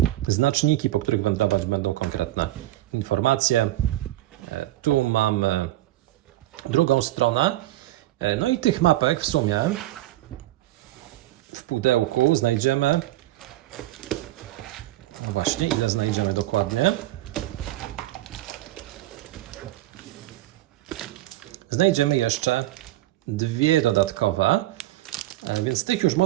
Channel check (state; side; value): quieter; left; 16.2 dB